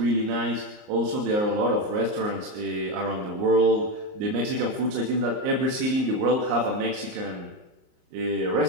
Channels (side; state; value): left; late; 38 ms